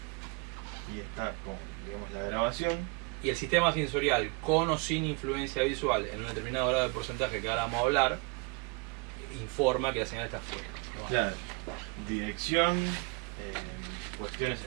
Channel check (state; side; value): quieter; left; 30.8 dB